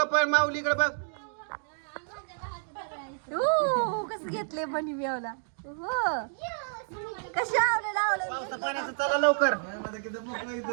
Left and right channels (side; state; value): left; silent; digital silence